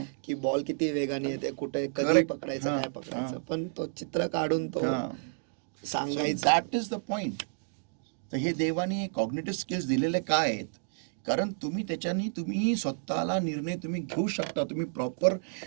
की बॉल किती वेगाने येते, कुठे कधी Correct. पकडायचं, काय पकडायचं. पण तो चित्र काढून तो सांगायचं. That is the point. तर हे देवाने कॉग्निटिव्ह स्किल्स दिलेले काय आहेत? कारण तुम्ही स्वतःला निर्णय तुम्ही घेऊ शकता. तुम्ही प्रॉपर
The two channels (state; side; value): silent; left; digital silence